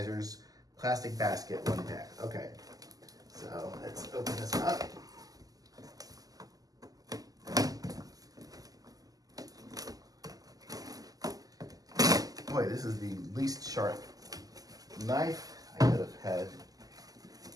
plastic basket 1-pack. Okay, so let's open this up. Boy, this is the least sharp knife I could have had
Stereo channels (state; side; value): late; left; 0.17 ms